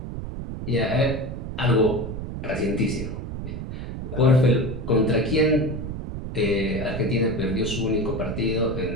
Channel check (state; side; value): noise; right; rumble, 7 dB below the sound